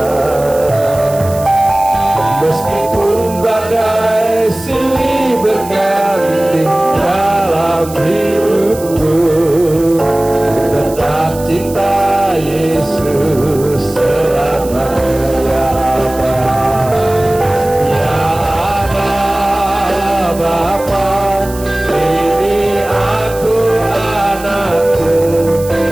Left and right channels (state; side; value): noise; right; hiss, 16 dB below the sound